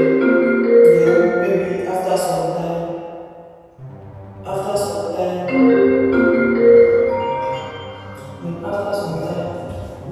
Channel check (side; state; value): both; identical; correlation 1.00